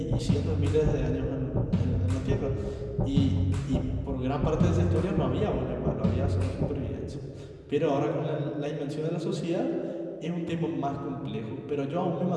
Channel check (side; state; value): both; identical; correlation 1.00